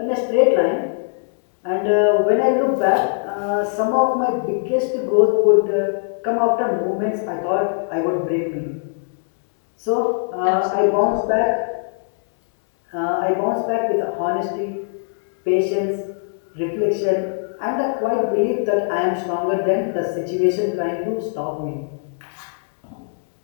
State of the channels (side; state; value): right; silent; 65 dB below the other